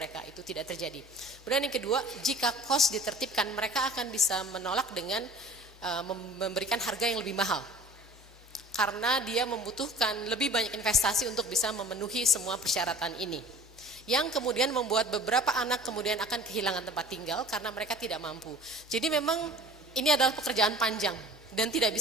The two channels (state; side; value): normal; both; correlation 0.45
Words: itu tidak terjadi. Kemudian yang kedua, jika kos ditertibkan, mereka akan bisa menolak dengan memberikan harga yang lebih mahal. Karena dia membutuhkan lebih banyak investasi untuk bisa memenuhi semua persyaratan ini. Yang kemudian membuat beberapa anak kemudian akan kehilangan tempat tinggal karena mereka tidak mampu. Jadi memang ini adalah pekerjaan panjang dan tidak